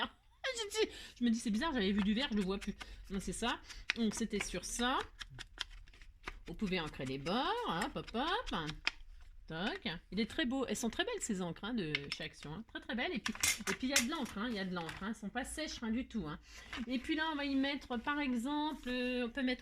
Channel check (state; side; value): identical; both; correlation 1.00